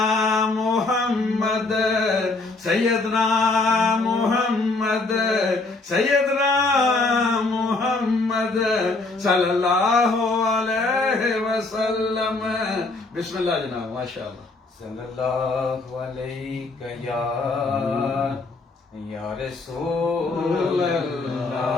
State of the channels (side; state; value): right; quieter; 3.4 dB